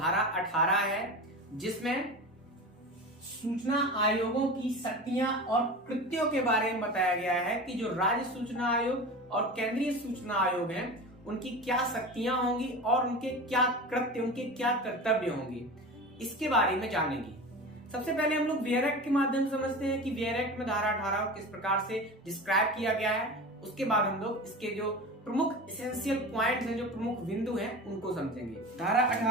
18 है, जिसमें सूचना आयोगों की शक्तियां और कृत्यों के बारे में बताया गया है कि जो राज्य सूचना आयोग और केंद्रीय सूचना आयोग हैं, उनकी क्या शक्तियां होंगी और उनके क्या कृत्य, उनके क्या कर्तव्य होंगे, इसके बारे में जानेंगे। सबसे पहले हम लोग वेयर एक्ट के माध्यम से समझते हैं कि वेयर एक्ट में धारा 18 को किस प्रकार से डिस्क्राइब किया गया है। उसके बाद हम लोग इसके जो प्रमुख एसेंशियल पॉइंट्स हैं, जो प्रमुख बिंदु हैं, उनको समझेंगे। धारा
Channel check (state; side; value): normal; both; correlation 0.30